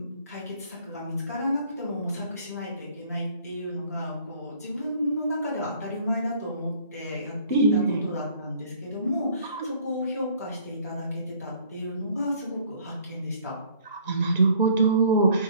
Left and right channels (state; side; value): inverted; both; correlation -0.57